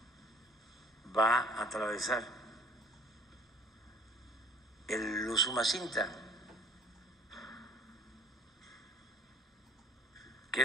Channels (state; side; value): normal; both; correlation 0.51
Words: va a atravesar el Usumacinta, que